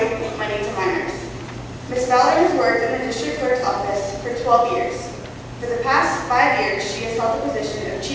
money to minors. Ms. Fowler has worked in the district clerk's office for 12 years. For the past 5 years, she has held the position of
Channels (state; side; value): identical; both; correlation 1.00